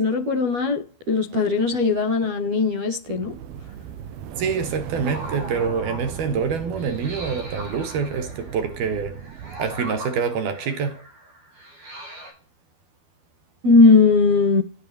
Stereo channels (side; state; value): left; late; 12 ms